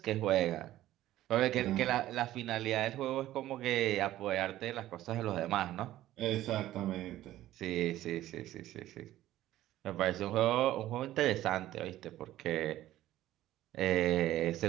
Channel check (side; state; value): left; quieter; 14.3 dB